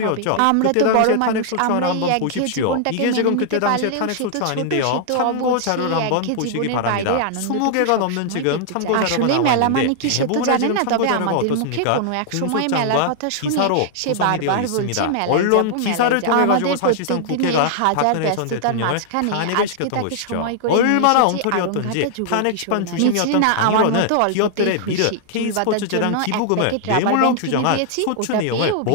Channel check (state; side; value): different; both; correlation -0.01